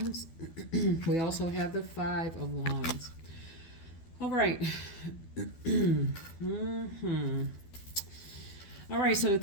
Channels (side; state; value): right; late; 12 ms